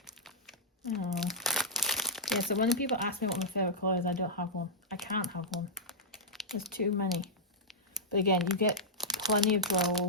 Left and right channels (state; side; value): normal; both; correlation -0.10